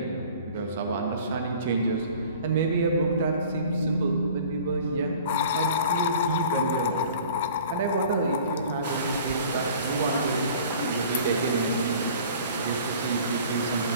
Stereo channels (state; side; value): inverted; both; correlation -0.47